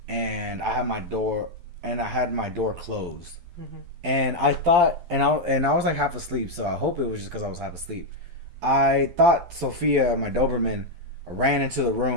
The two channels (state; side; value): late; left; 12 ms